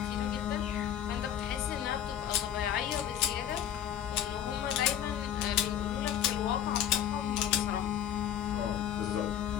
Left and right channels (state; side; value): quieter; right; 10.2 dB